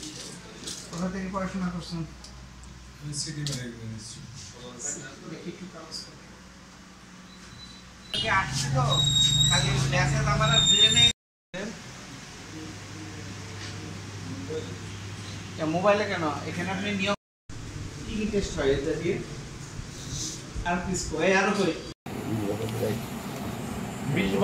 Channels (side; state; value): both; identical; correlation 1.00